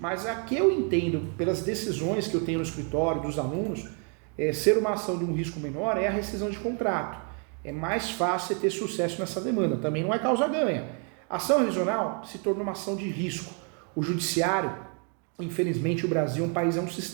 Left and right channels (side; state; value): left; quieter; 37.7 dB